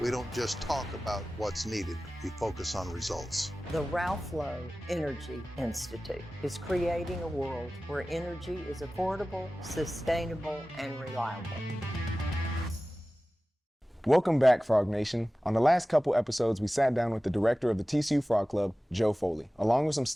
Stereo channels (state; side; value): normal; both; correlation 0.96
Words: We don't just talk about what's needed, we focus on results. The Ralph Lowe Energy Institute is creating a world where energy is affordable, sustainable, and reliable. Welcome back, Frog Nation. On the last couple episodes, we sat down with the director of the TCU Frog Club, Joe Foley, along with some